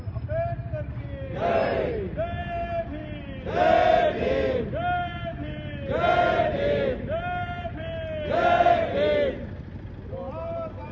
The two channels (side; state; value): both; identical; correlation 1.00